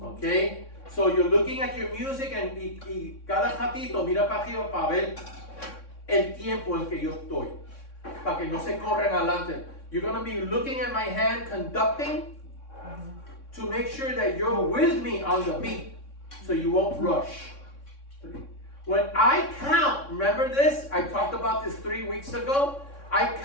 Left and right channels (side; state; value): right; late; 3.6 ms